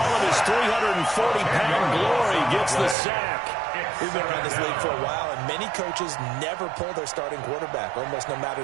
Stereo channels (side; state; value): left; drops out; at 3.0 s